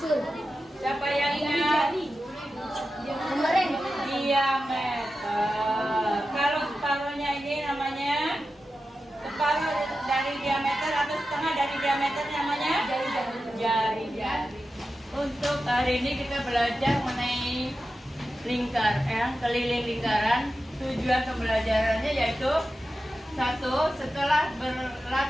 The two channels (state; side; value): normal; both; correlation 0.92